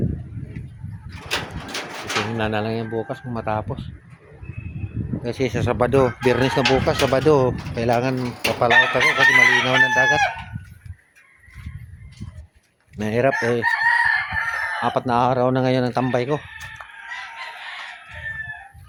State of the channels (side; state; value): both; identical; correlation 1.00